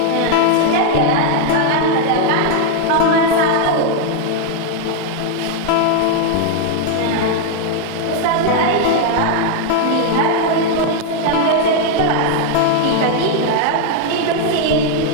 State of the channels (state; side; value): different; both; correlation 0.00